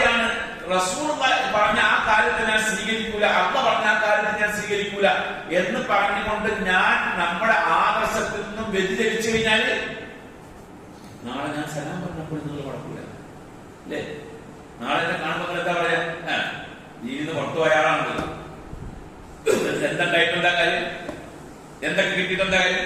റസൂൽ പറഞ്ഞ ആ കാര്യത്തെ ഞാൻ സ്വീകരിക്കൂല, അള്ളാഹ് പറഞ്ഞ ആ കാര്യത്തെ ഞാൻ സ്വീകരിക്കൂല എന്ന് പറഞ്ഞുകൊണ്ട് ഞാൻ നമ്മുടെ ആദർശത്തിൽ നിന്നും വ്യതിചലിച്ചു കഴിഞ്ഞാല് നാളെ ഞാൻ സലാം പറഞ്ഞപ്പോൾ നിങ്ങൾ കുഴപ്പമില്ല, അല്ലേ? നാളെ എന്നെ കാണുമ്പോൾ എന്താ പറയാ? നീ ഇന്ന് പുറത്തു പോയാളാണല്ലോ, എന്തുണ്ടായിട്ടുണ്ടാ കാര്യം, എന്തൊക്കെ കിട്ടിയിട്ടുണ്ടാ കാര്യം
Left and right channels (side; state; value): both; identical; correlation 1.00